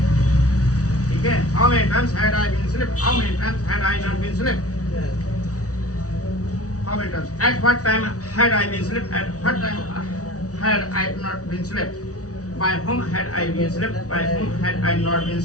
ठीक है how many times had I been slept how many times had I not been slept how many times at what time had I been slept at what time had I not been slept By whom had I been slept? By whom had I not been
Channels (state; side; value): late; right; 0.67 ms